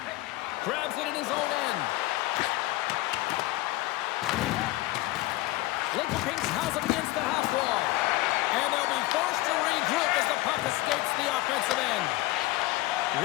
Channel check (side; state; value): right; quieter; 18.8 dB